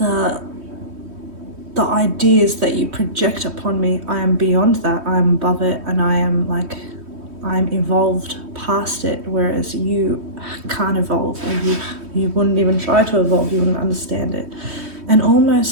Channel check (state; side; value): late; left; 3.1 ms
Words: ideas that you project upon me. I am beyond that. I am above it, and I'm evolved past it, whereas you can't evolve, or you wouldn't even try to evolve. You wouldn't understand it. And